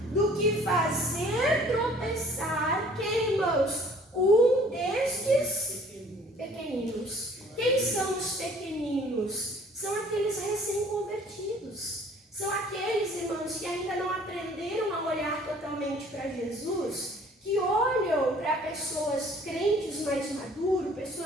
do que fazer tropeçar, quem, irmãos? Um destes pequeninos. Quem são os pequeninos? São aqueles recém-convertidos. São aqueles, irmãos, que ainda não aprenderam a olhar totalmente para Jesus, que olham para pessoas crentes mais maduros,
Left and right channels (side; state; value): both; normal; correlation 0.54